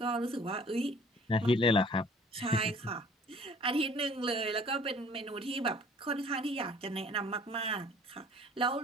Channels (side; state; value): both; normal; correlation 0.52